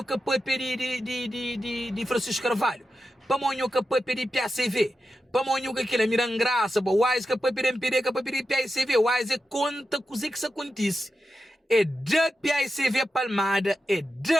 que pode pedir de Francisco Carvalho. Para Monho que pode pedir PACV. Para Monho que aquilo é mirando graça. Para Wise que pode pedir MPD, que pode pedir PACV. Wise é conta coisa que isso acontece. É de PACV Palmada, é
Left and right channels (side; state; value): both; normal; correlation 0.90